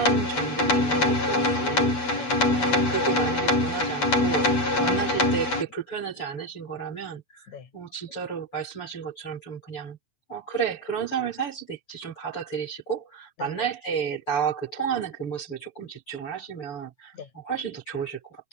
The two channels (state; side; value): late; right; 8.3 ms